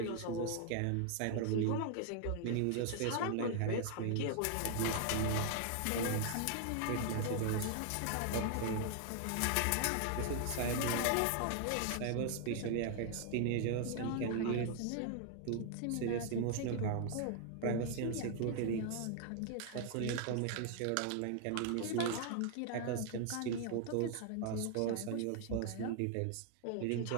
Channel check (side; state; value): both; different; correlation 0.00